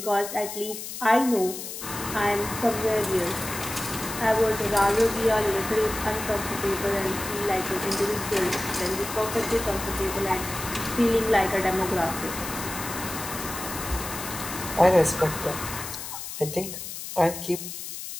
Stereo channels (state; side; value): noise; left; hiss, 8 dB below the sound